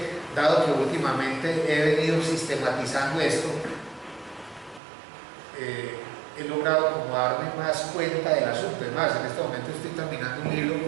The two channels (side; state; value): left; drops out; at 4.8 s